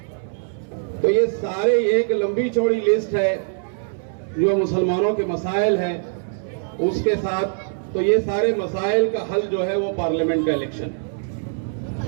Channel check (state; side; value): silent; left; 64 dB below the other